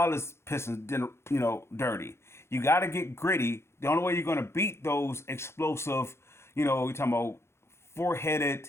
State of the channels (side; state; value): right; late; 0.13 ms